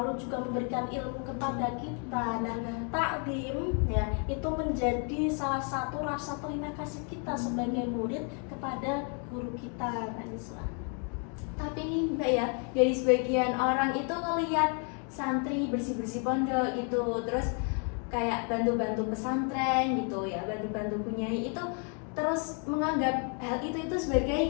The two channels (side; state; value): right; quieter; 39.7 dB